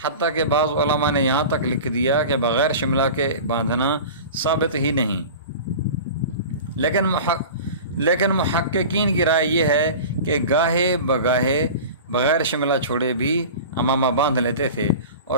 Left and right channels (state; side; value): inverted; both; correlation -0.35